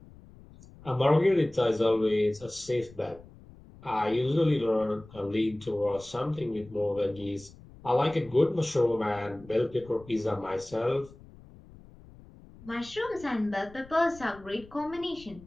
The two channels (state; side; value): noise; left; rumble, 21 dB below the sound